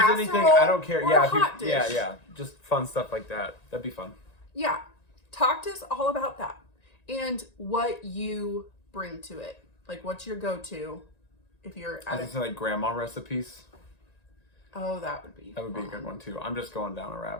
anything, I don't care. Or Yeah, a hot dish? yeah. Just fun stuff like that. That'd be fun. Yeah. Talk to us all about that. And what you bring to it. Like, what's your go-to if you're I think like grandma recipes. Oh, that would be a good one too. I'm just going down a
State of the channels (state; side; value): late; right; 1.9 ms